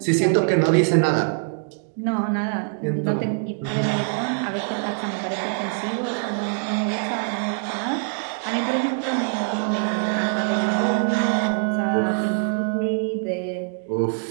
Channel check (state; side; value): silent; left; 62 dB below the other